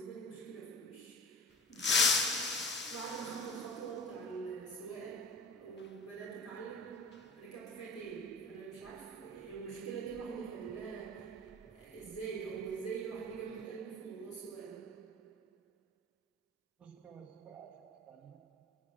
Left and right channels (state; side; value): normal; both; correlation 0.34